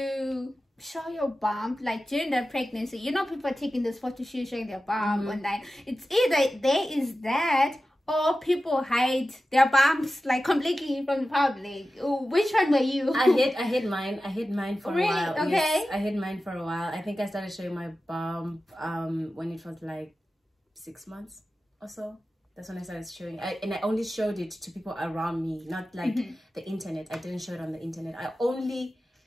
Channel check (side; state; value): both; normal; correlation 0.94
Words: show your bump like during the pregnancy? You know, people are taking this photo shoot showing their bump online. It's either there is that, or people hide their bumps like completely from the public. Ooh, which one were you? I hid mine for really? a while. Okay. Yes, I hid mine for a while. I think I started showing my bump when it was like 6 months or so. That's when I started showing. And I only showed it to people around me, not like the internet. I didn't show it on the internet. I only